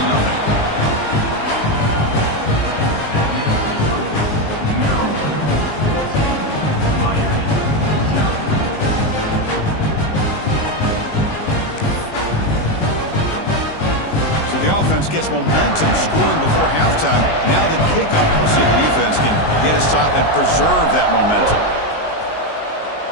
The offense gets momentum, scoring before halftime. Now the kickoff. We'll see if the defense can get a stop and preserve that momentum.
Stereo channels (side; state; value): right; late; 19 ms